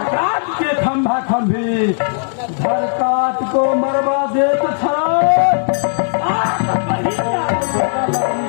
काट के खंभा खंभी, घर काट को मरवा दे तो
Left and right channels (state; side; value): silent; right; digital silence